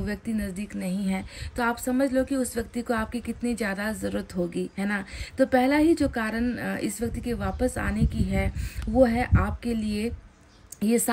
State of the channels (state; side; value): identical; both; correlation 1.00